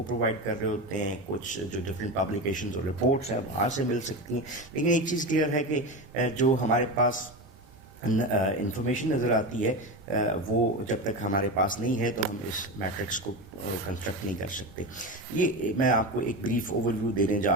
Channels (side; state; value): both; normal; correlation 0.22